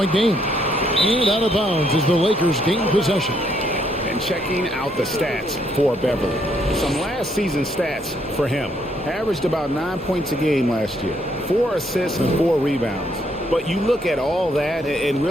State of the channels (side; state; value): both; normal; correlation 0.71